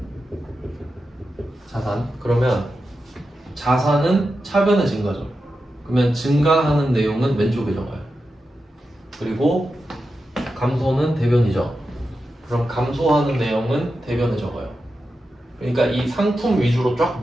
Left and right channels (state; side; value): normal; both; correlation 0.90